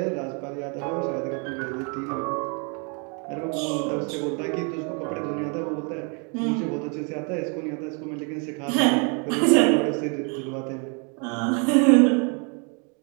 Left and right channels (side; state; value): left; quieter; 35.8 dB